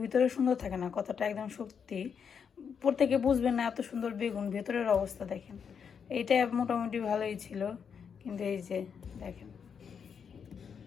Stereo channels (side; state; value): right; quieter; 6.9 dB